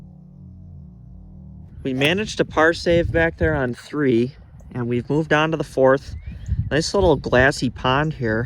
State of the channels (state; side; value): identical; both; correlation 1.00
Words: We managed a par save back there on 3, and we've moved on to the 4th. Nice little glassy pond